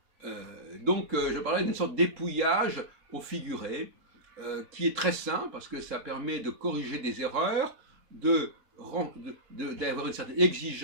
Donc, je parlais d'une sorte d'épouillage au figuré, qui est très sain, parce que ça permet de corriger des erreurs, d'avoir une certaine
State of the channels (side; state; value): left; late; 3.7 ms